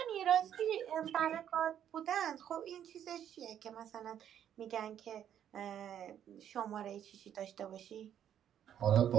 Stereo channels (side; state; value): left; quieter; 9.9 dB